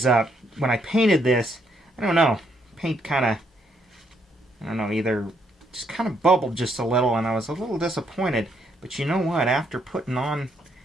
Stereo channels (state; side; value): normal; both; correlation 0.73